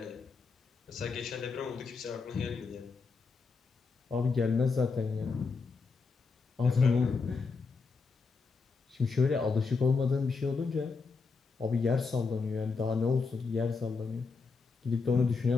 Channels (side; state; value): right; quieter; 4.6 dB